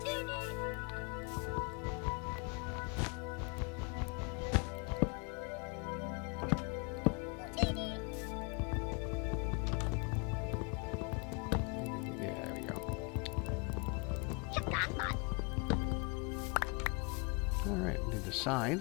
Alright, do the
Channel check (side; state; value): right; quieter; 33.4 dB